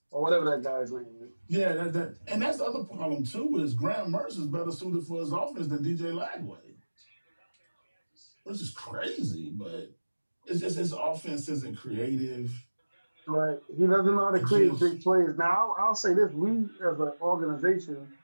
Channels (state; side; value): inverted; both; correlation -1.00